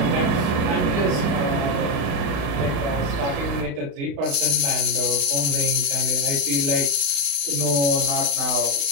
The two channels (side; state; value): left; late; 35 ms